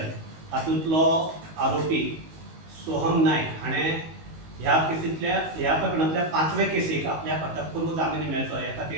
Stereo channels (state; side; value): late; left; 19 ms